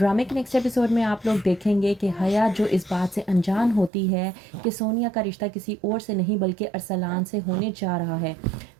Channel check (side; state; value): left; drops out; at 3.9 s